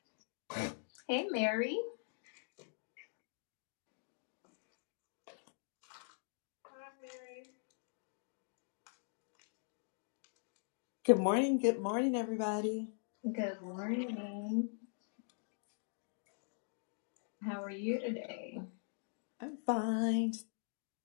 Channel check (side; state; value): right; silent; digital silence